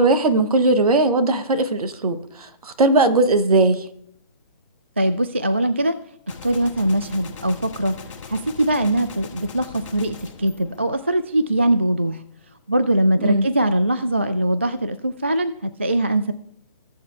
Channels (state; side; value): inverted; both; correlation -0.61